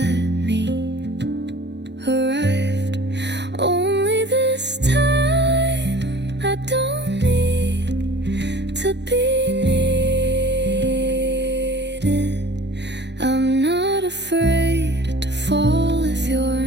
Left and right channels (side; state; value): left; late; 0.51 ms